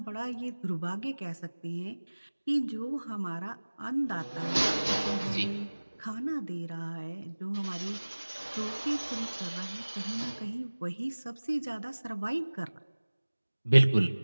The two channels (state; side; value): inverted; both; correlation -1.00